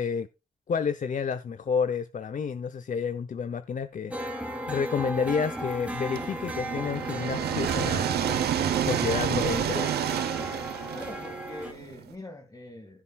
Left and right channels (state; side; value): normal; both; correlation 0.43